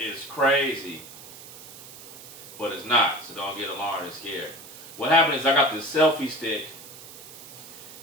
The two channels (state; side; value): noise; right; hiss, 16 dB below the sound